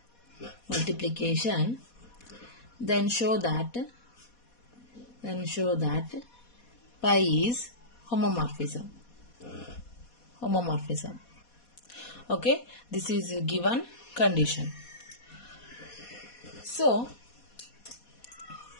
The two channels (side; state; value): right; late; 4.2 ms